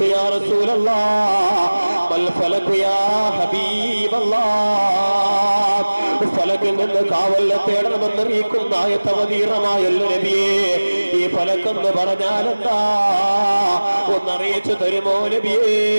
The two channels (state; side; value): inverted; both; correlation -1.00